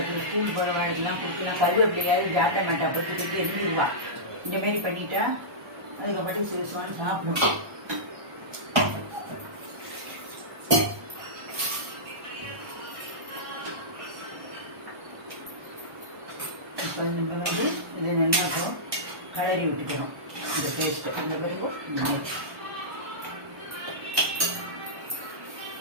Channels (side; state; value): left; late; 1.1 ms